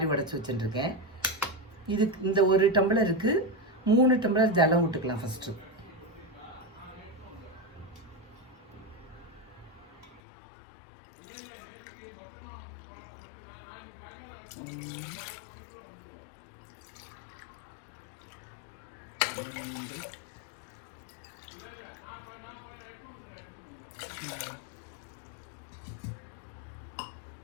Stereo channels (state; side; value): drops out; right; at 10.2 s